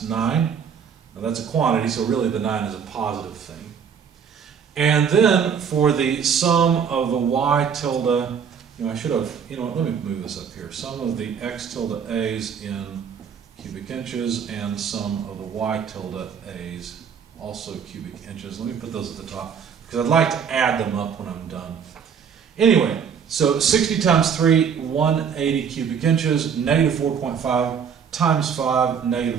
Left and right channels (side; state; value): left; quieter; 7.1 dB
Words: 9. Now that's a quantity, so really the 9 is a positive thing. And then for the sum of the y tilde, I should have, let me move this up here. Sum of the x tilde a's in cubic inches and sum of the y tilde a's also cubic inches. Let me put those at the top because I'd like to add them up when I'm done. Anyway, so 60 times 3, 180 cubic inches, negative 4.5 times 5,